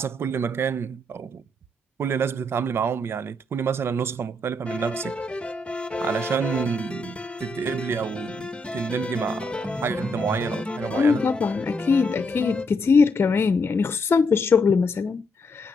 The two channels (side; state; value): both; normal; correlation 0.77